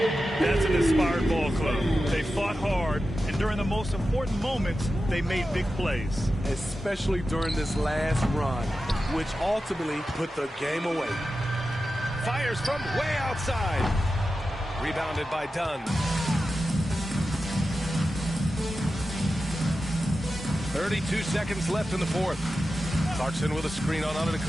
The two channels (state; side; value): normal; both; correlation 0.92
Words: That's an inspired ball club. They fought hard, and during the most important moments, they made big plays. Especially during this last run, which ultimately put the game away. Fires from way outside. Rebounded by Dunn. 32 seconds left in the fourth. Clarkson with a screen on